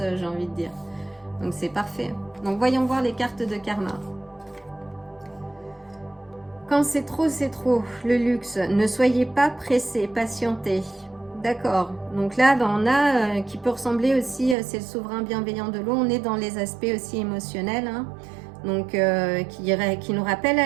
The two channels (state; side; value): drops out; left; at 14.6 s